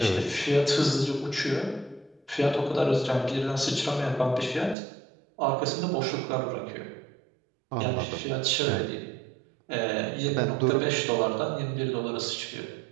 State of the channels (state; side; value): drops out; left; at 4.8 s